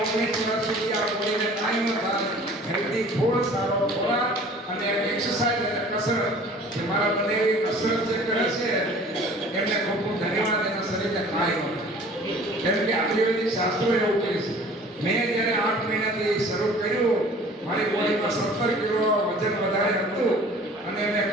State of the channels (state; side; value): normal; both; correlation 0.48